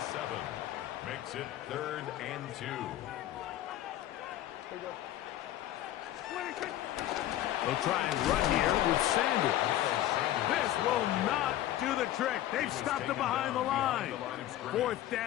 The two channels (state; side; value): quieter; right; 13.5 dB